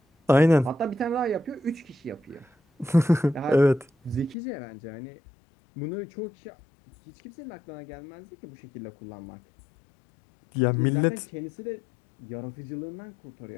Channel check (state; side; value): drops out; right; at 4.4 s